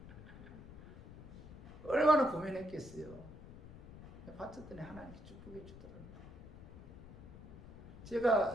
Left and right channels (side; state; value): left; noise; rumble, 15 dB below the sound